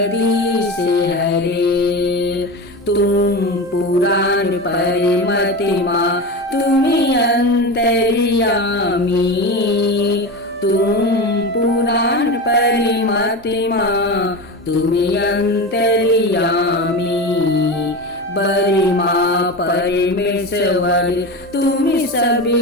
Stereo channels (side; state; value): both; normal; correlation 0.24